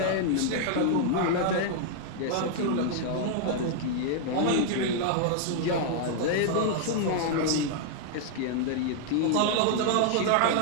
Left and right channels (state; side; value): different; both; correlation 0.00